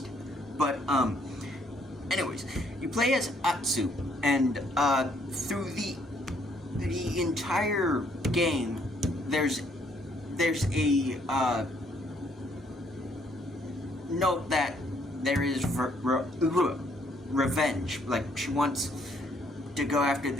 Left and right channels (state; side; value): normal; both; correlation 0.68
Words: But, anyways, you play as Atsu, and, through the entire game, there's a, note that there is revenge. Like, she wants to go after